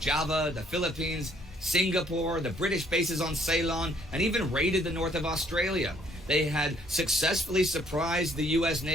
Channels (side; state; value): both; normal; correlation 0.64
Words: the Philippines, Singapore, the British bases on Ceylon, and even raided the north of Australia. They had successfully surprised the U.S.